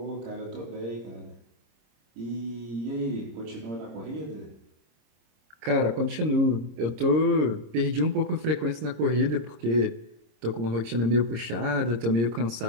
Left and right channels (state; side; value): late; left; 26 ms